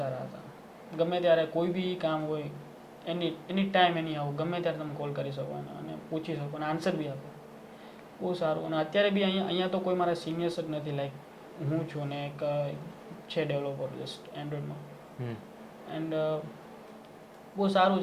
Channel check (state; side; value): identical; both; correlation 1.00